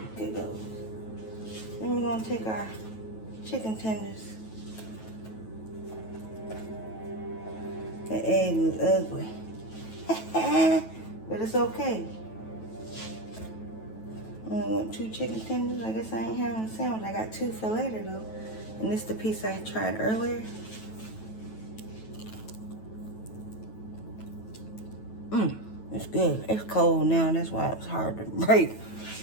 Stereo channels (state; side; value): late; right; 9.2 ms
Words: Here it goes. Then we're gonna take our chicken tenders. The egg was ugly. But it's okay. I only want 2 chicken tenders. I guess I ain't having a sandwich. I got 2 for later though. And this is the piece I tried earlier. It's good. It's cold now. That's why it was hard to break.